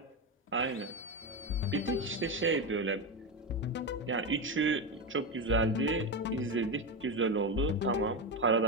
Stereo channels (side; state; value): both; normal; correlation 0.14